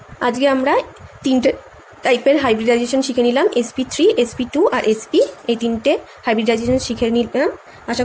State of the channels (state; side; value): identical; both; correlation 1.00